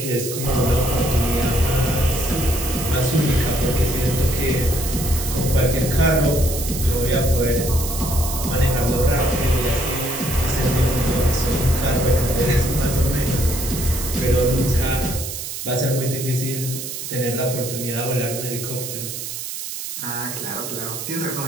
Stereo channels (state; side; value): noise; right; hiss, 7 dB below the sound